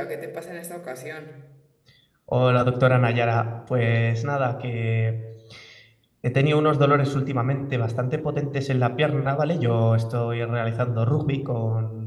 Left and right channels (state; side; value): identical; both; correlation 1.00